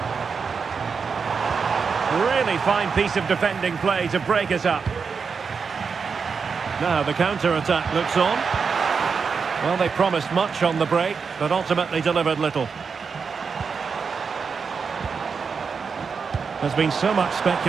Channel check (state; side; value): quieter; left; 5.6 dB